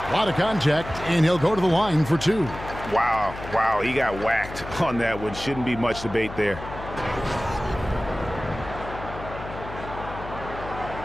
A lot of contact, and he'll go to the line for 2. Wow, he got whacked on that one. Shouldn't be much debate there.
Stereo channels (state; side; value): noise; left; hum, 11 dB below the sound